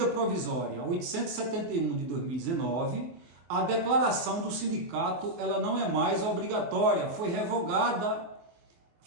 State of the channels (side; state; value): left; late; 24 ms